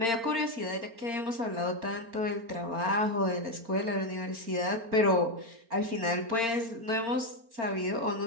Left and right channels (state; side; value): late; left; 4.4 ms